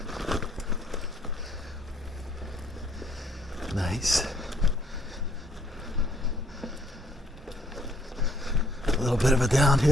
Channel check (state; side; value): normal; both; correlation 0.63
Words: Nice. A little bit of a